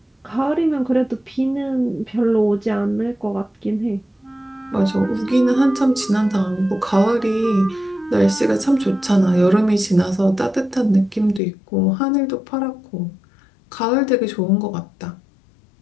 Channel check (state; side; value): drops out; right; at 11.4 s